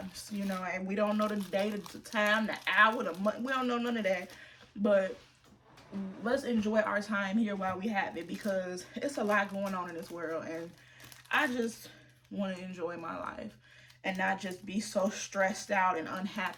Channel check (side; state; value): both; identical; correlation 1.00